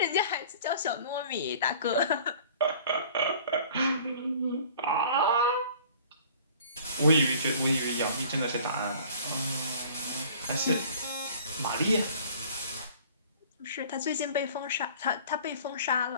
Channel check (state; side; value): inverted; both; correlation -0.48